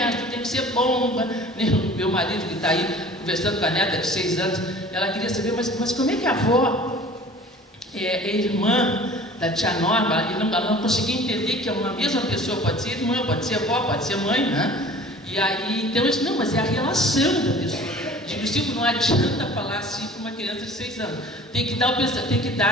tem que ser bom. Meu marido que está aí conversando com a neta de 6 anos, ela queria saber, mas como é que a avó é irmã da tia Norma? Ela não conseguia entender que uma mesma pessoa pode ser irmã, pode ser avó, pode ser mãe, né? E aí, então eu disse, não, mas é a relação da pessoa. Tipo, não adianta falar assim para uma criança de 6 anos. Tem que dar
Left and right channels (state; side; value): normal; both; correlation 0.45